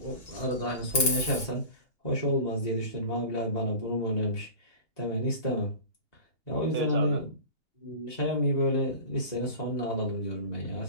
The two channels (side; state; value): right; late; 2.8 ms